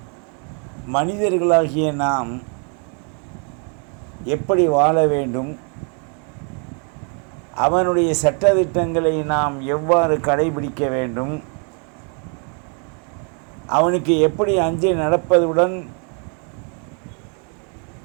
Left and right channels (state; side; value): quieter; left; 39.4 dB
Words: மனிதர்களாகிய நாம் எப்படி வாழ வேண்டும், அவனுடைய சட்டதிட்டங்களை நாம் எவ்வாறு கடைபிடிக்க வேண்டும், அவனுக்கு எப்படி அஞ்சி நடப்பதுடன்